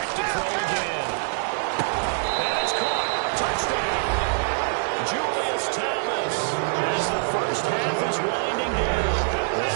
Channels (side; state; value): left; silent; 62 dB below the other